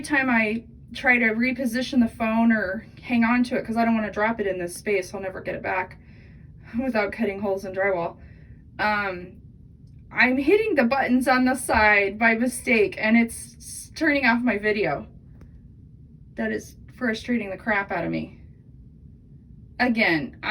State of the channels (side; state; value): both; identical; correlation 1.00